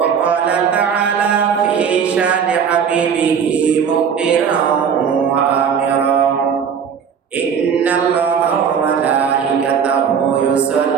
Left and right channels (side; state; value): left; quieter; 7.1 dB